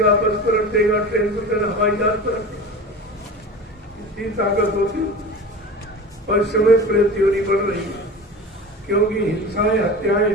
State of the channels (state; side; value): normal; both; correlation 0.32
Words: बस पलट देगा, ट्रेन पलट, हवाई जहाज पलट देगा। इतनी ताकत होती। और समय प्रत्योरी बढ़ रही है क्योंकि हिंसाएं, हत्याएं